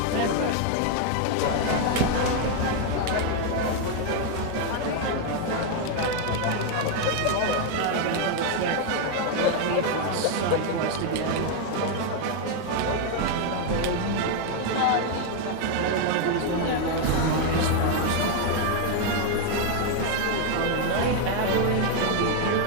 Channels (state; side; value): different; both; correlation 0.01